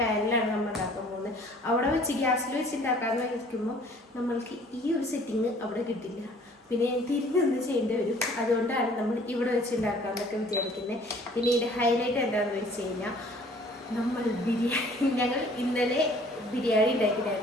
നമ്മൾ ഉണ്ടാക്കാൻ പോകുന്നത്. അവിടെ വെച്ച് ഗ്യാസിൽ വെച്ച് ഉണ്ടാക്കാമെന്ന് വയ്ക്കുമ്പോൾ നമ്മൾക്ക് ഈ ഒരു സെറ്റിങ് അവിടെ കിട്ടില്ല. പിന്നെ തിരിഞ്ഞൊന്ന് ചെയ്യേണ്ടി വരും. അതുകൊണ്ടാണ് നമ്മൾ ഇവിടെ വെച്ച് ഉണ്ടാക്കാമെന്നൊക്കെ വിചാരിക്കുന്നത്. പിന്നെ ഇതിൻ്റെ ഹൈലൈറ്റ് എന്താണെന്ന് വെച്ച് കഴിഞ്ഞാൽ ഞങ്ങൾ ഇന്നലെ ബിരിയാണി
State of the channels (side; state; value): both; normal; correlation 0.54